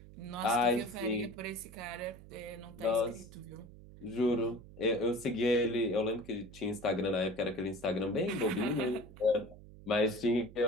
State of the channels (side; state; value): right; noise; hum, 18 dB below the sound